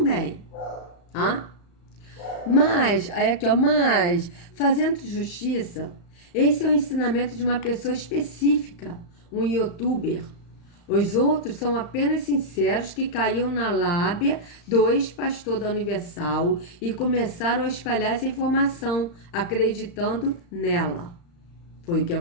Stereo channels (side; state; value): right; late; 35 ms